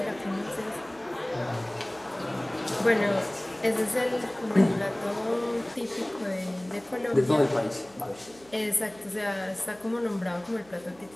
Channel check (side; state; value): right; noise; hum, 26 dB below the sound